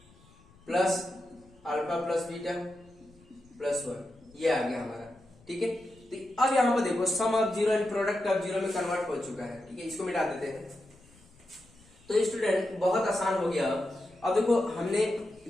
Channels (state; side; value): noise; left; rumble, 28 dB below the sound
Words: plus alpha plus beta +1, ये आ गया हमारा, ठीक है। तो अब यहाँ पर देखो sum of zero and product of zero में कन्वर्ट हो चुका है, ठीक है, इसको मिटा देते हैं। तो स्टूडेंट बहुत आसान हो गया। अब देखो हमने